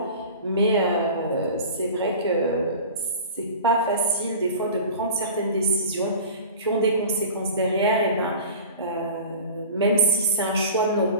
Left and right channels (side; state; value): both; inverted; correlation -0.36